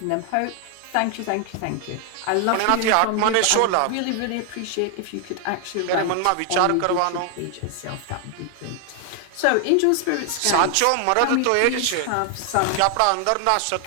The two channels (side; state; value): both; different; correlation 0.00